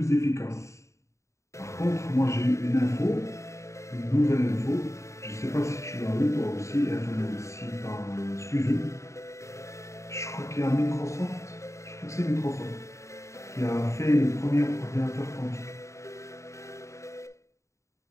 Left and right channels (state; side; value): late; right; 0.14 ms